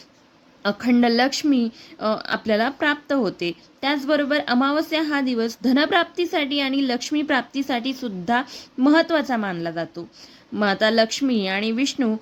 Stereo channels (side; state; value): both; identical; correlation 1.00